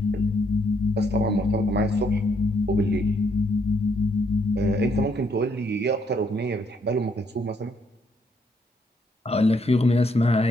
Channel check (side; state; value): both; normal; correlation 0.72